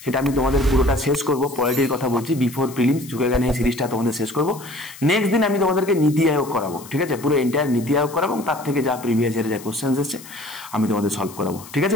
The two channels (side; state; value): left; noise; hiss, 18 dB below the sound